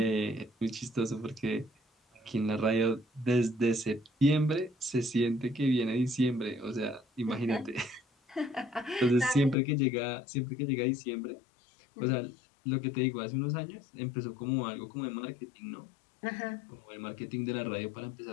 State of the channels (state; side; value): drops out; right; at 9.6 s